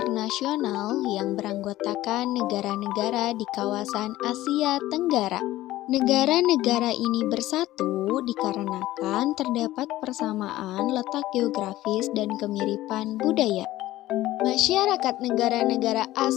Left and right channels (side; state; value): right; quieter; 15.8 dB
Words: yang beranggotakan negara-negara di kawasan Asia Tenggara. Negara-negara ini bersatu dikarenakan terdapat persamaan letak geografis dan kemiripan budaya. Masyarakat negara-negara